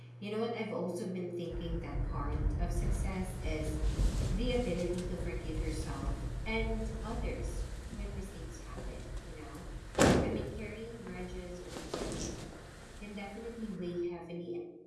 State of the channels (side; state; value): both; identical; correlation 1.00